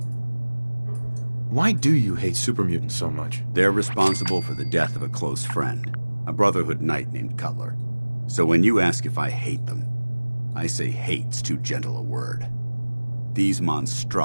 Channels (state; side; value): inverted; both; correlation -1.00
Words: Why do you hate super mutants so much? They're responsible for the death of a close friend, a Brotherhood knight named Cutler. So when you ask if I hate them, I say hate's too gentle a word. These